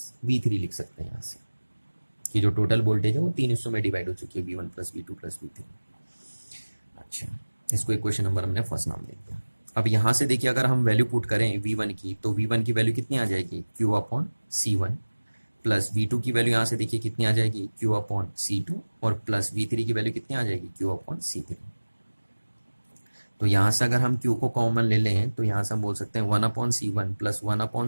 V3 लिख सकते हैं यहाँ से, कि जो टोटल वोल्टेज है वो 3 हिस्सों में डिवाइड हो चुकी है, V1 plus V2 plus V3। अच्छा, इसको इक्वेशन नंबर हमने फर्स्ट नाम दे दिया। अब यहाँ से देखिए अगर हम वैल्यू पुट करें V1 की, तो V1 की वैल्यू कितनी आ जाएगी, Q upon C1, plus V2 की वैल्यू यहाँ से देखिए कितनी आ जाएगी, Q अपॉन C2, और प्लस V3 की वैल्यू कितनी आ जाएगी, Q अपॉन C3। तो यहाँ से अगर हम Q को कॉमन ले लें तो यहाँ से हम बोल सकते हैं 1/C1 plus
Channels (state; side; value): inverted; both; correlation -1.00